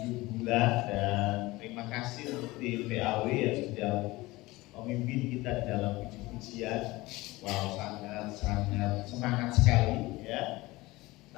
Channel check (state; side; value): quieter; right; 20.4 dB